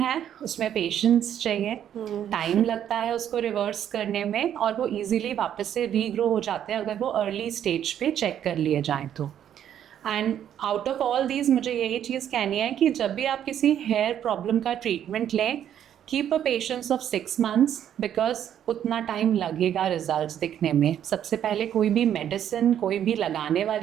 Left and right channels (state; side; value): quieter; left; 10.0 dB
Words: उसमें पेशेंस चाहिए, टाइम लगता है उसको रिवर्स करने में, और वो ईजिली वापस से रीग्रो हो जाते हैं अगर वो अर्ली स्टेज पे चेक कर लिए जाएँ तो. And out of all these मुझे यही चीज़ कहनी है कि जब भी आप किसी हेयर प्रॉब्लम का ट्रीटमेंट लें, keep a patience of 6 months, because उतना टाइम लगेगा रिजल्ट्स दिखने में. सबसे पहले कोई भी मेडिसिन, कोई भी लगाने